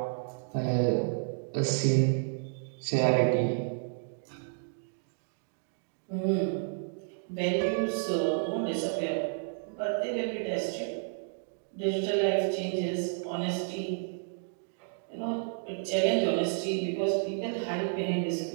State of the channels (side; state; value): left; silent; digital silence